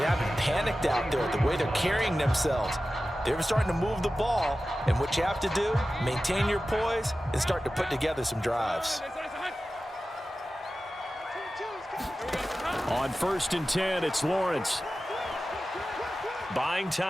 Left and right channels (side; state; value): both; normal; correlation 0.94